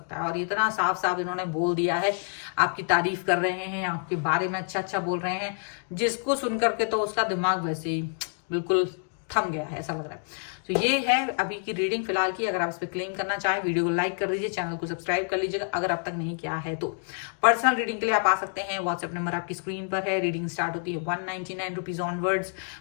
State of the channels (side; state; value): right; silent; 60 dB below the other